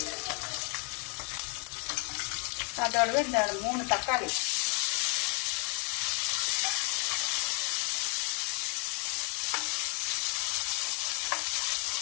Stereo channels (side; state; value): right; quieter; 35.7 dB